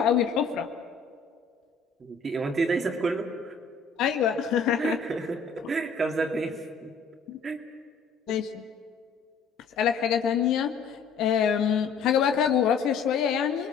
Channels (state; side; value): quieter; right; 5.1 dB